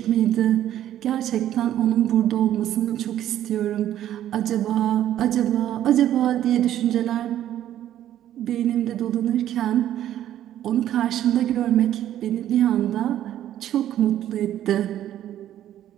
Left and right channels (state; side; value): quieter; left; 11.8 dB